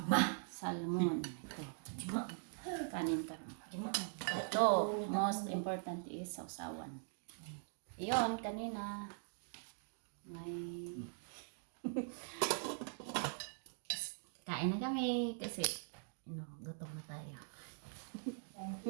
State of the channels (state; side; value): silent; left; digital silence